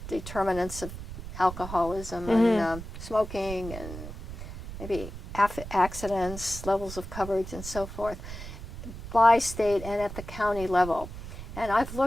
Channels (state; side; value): noise; right; rumble, 10 dB below the sound